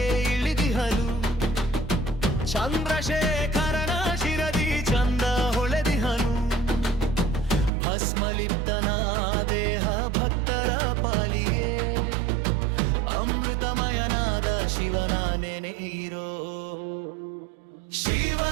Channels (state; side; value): drops out; left; at 7.7 s